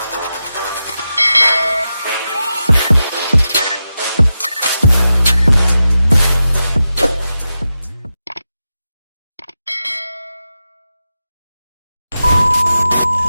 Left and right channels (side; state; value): both; inverted; correlation -0.91